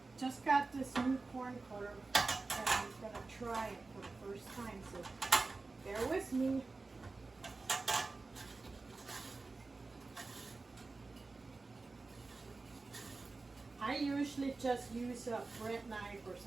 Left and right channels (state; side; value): quieter; left; 3.7 dB